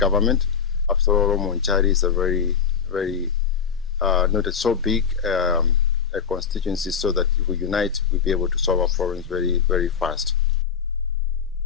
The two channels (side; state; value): right; quieter; 6.9 dB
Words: After all, Monchari is a very, not so big a constituency, so that if we unite, we'll be able to solve our problems very, very fast.